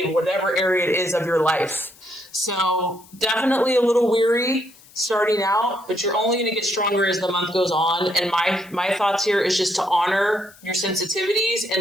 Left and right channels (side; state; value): left; noise; hiss, 25 dB below the sound